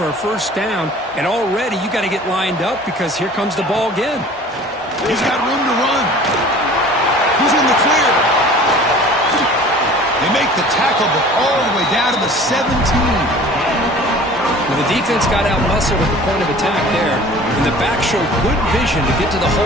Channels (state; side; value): normal; both; correlation 0.46